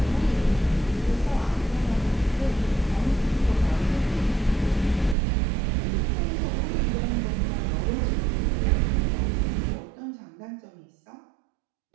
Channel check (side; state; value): left; drops out; at 5.2 s